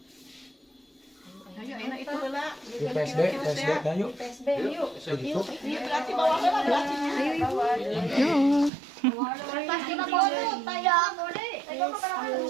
Ayo enak itu heula. Di PSD dah yuk. PSB yuk. Begitu. Ini berarti bawah heula berarti. Yo. Pasti ka bodo tayo. Tayo ka para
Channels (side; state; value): left; drops out; at 8.7 s